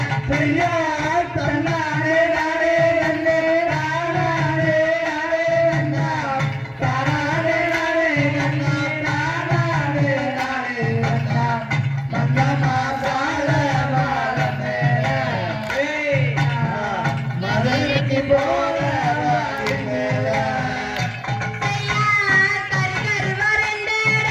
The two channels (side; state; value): both; identical; correlation 1.00